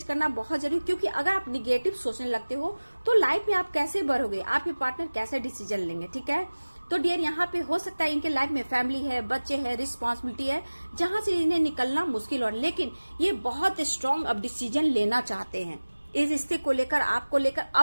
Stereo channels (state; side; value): inverted; both; correlation -1.00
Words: करना बहुत जरूरी। क्योंकि अगर आप निगेटिव सोचने लगते हो तो लाइफ में आप कैसे बढ़ोगे, आपके पार्टनर कैसे डिसीजन लेंगे, ठीक है। तो डियर यहाँ पे हो सकता है इनके लाइफ में फैमिली है, बच्चे है, रिस्पॉन्सिबिलिटी है, जहां से इन्हें निकलना मुश्किल हो, लेकिन ये बहुत स्ट्रांग अब डिसीजन लेना चाहते हैं इस रिश्ते को लेकर, आपको लेकर,